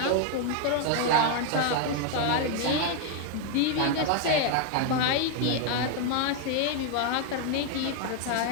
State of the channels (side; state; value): both; different; correlation 0.01